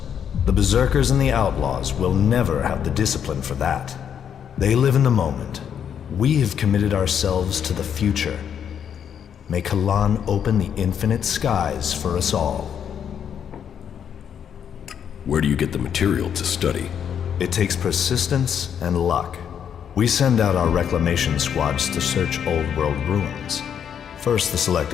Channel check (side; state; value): right; quieter; 8.4 dB